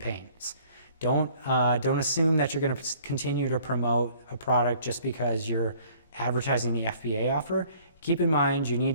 Don't assume that you're going to continue to promote a product just because you're advertising the FBA offer. Keep in mind you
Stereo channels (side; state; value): both; inverted; correlation -0.56